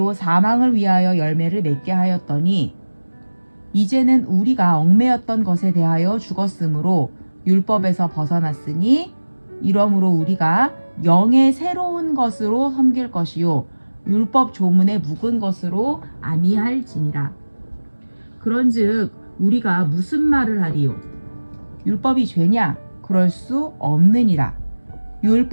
사망을 위하여 열매를 맺게 하였더니 이제는 우리가 얽매였던 것에 대하여 죽었으므로 율법에서 벗어났으니 이러므로 우리가 영의 새로운 것으로 섬길 것이요 율법 조문에 묵은 것으로 아니할지니라. 그런즉 우리가 무슨 말을 하리요? 율법이 죄냐? 그럴 수 없느니라.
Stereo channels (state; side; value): inverted; both; correlation -1.00